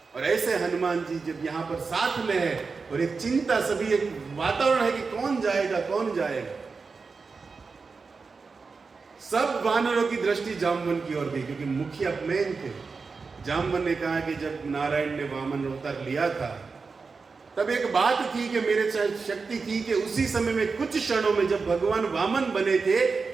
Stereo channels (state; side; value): quieter; left; 4.6 dB